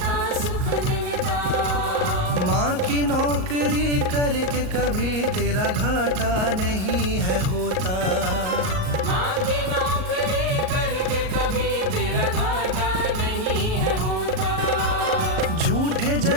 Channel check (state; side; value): late; left; 38 ms